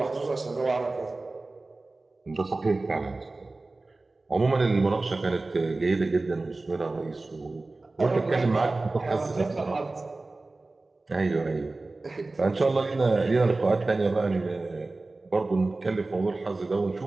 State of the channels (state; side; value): quieter; left; 3.3 dB